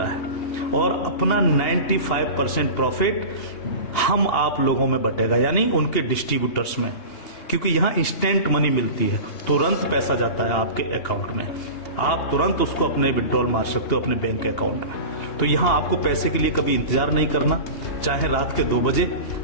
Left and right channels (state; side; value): late; right; 2.8 ms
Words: है। और अपना 95% प्रॉफिट हम आप लोगों में बटेगा, यानी उनके डिस्ट्रीब्यूटर्स में, क्योंकि यहां इंस्टेंट मनी मिलती है, तुरंत पैसा जाता है आपके अकाउंट में। आप तुरंत उसको अपने विड्रॉल मार सकते हो अपने बैंक अकाउंट में। तो यहाँ आपको पैसे के लिए कभी इंतजार नहीं करना, चाहे रात के 2 बजे